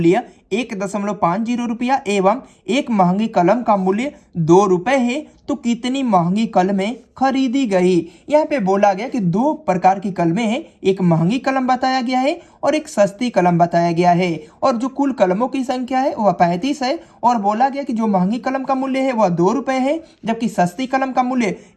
1.50 रुपया एवं एक महंगी कलम का मूल्य 2 रुपए है तो कितनी महंगी कलमें खरीदी गई। यहाँ पे बोला गया कि दो प्रकार की कलमें हैं, एक महंगी कलम बताया गया है और एक सस्ती कलम बताया गया है, और जो कुल कलमों की संख्या है वह 35 है। और बोला गया कि जो महंगी कलम का मूल्य है वह 2 रुपए है, जबकि सस्ती कलम का मूल्य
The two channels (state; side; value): identical; both; correlation 1.00